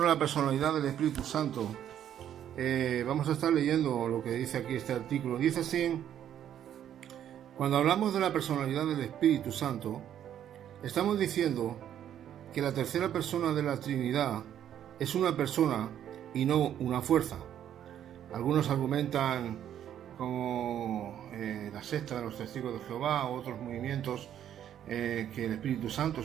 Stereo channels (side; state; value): left; quieter; 10.3 dB